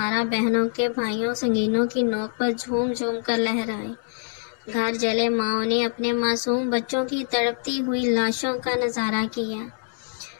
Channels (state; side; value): silent; right; digital silence